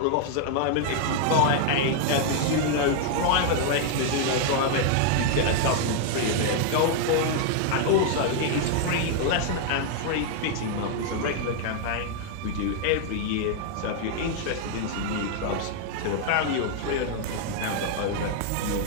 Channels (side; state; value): both; different; correlation 0.00